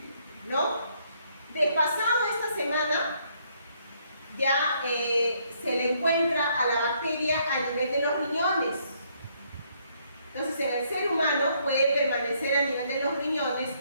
¿no? De pasado esta semana, ya se le encuentra a la bacteria a nivel de los riñones. Entonces, en el ser humano puede permanecer a nivel de los riñones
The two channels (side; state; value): both; inverted; correlation -0.70